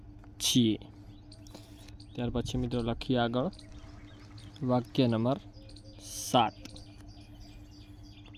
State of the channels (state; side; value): identical; both; correlation 1.00